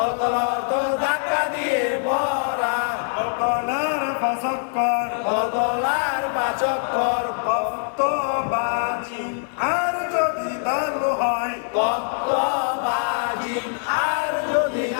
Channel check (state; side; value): silent; right; 63 dB below the other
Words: অর্থ ধাক্কা দিয়ে পড়া কলকলার ফসক্কর কলকলার পাচক্কর কত বাজি আর যদি লাল হয় কত বাজি আর যদি